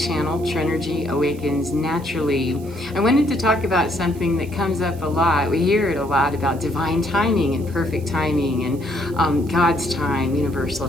Trenergy Awakens Naturally. I wanted to talk about something that comes up a lot. We hear it a lot about divine timing and perfect timing and God's time, universal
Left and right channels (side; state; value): right; noise; hiss, 23 dB below the sound